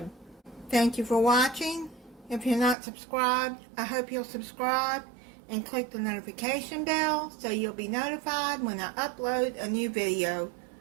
Thank you for watching. If you're not subscribed, I hope you'll subscribe and click the notification bell so you'll be notified when I upload a new video.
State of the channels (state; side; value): drops out; left; at 2.8 s